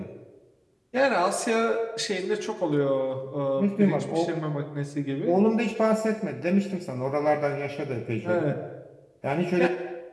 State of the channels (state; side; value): identical; both; correlation 1.00